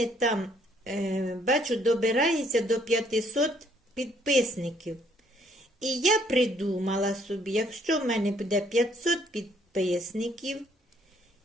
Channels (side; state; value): both; normal; correlation 0.66